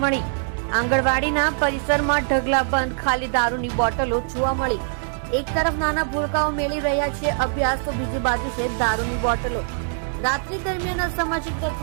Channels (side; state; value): left; silent; 63 dB below the other